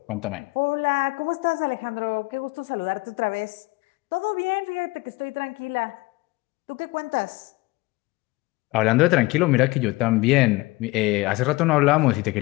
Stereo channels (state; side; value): quieter; right; 22.1 dB